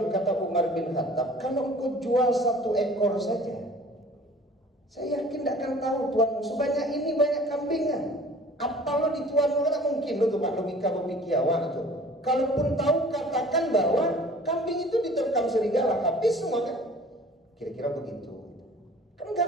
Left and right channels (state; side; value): normal; both; correlation 0.48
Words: kata Umar bin Khattab, kalau engkau jual 1 ekor saja, saya yakin tidak akan tahu tuanmu sebanyak ini banyak kambingnya. Apa lo di tuanmu kan mungkin lo tuh Pak logika berpikiawan tuh. Kalaupun tahu katakan bahwa kambing itu diterkam serigala, habis semua kan. Kira-kira begitu. Kan